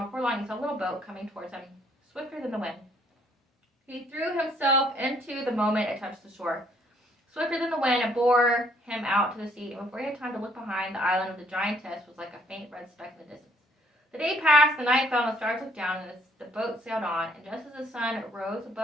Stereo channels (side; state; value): both; normal; correlation 0.65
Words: before long he saw a little boat coming towards him, swifter than the wind. He threw himself into the moment it touched the shore. Swifter than the wind, it bore him out to the sea, and before he had time to look behind, the island of the giantess was like a faint red speck in the distance. The day passed, the night fell, and the stars looked down, and the boat sailed on, and just as the sun rose